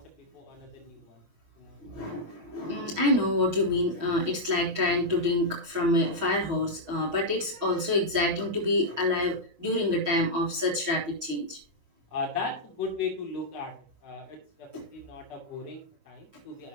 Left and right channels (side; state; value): left; late; 6.2 ms